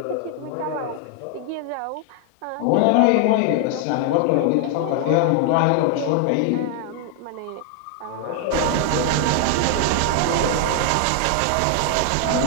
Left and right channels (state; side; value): different; both; correlation 0.00